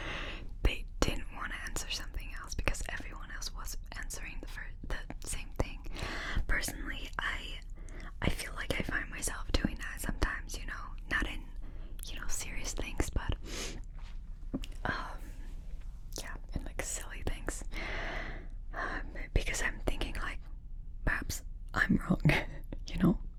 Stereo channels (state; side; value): identical; both; correlation 1.00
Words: they didn't want to answer something else because everyone else was answering the same thing. Personally, I feel like I find myself doing that sometimes, you know, not in, you know, serious things, but yeah, in like silly things. Because I'm thinking like, perhaps I'm wrong, you know?